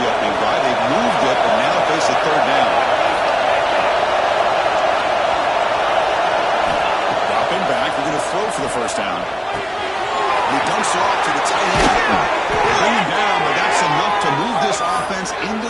opening drive. They've moved it, but now face a third down. Dropping back. We're going to throw for the first down. He dumps it off to the tight end. Bring him down, but that's enough to move this offense into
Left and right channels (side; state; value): both; identical; correlation 1.00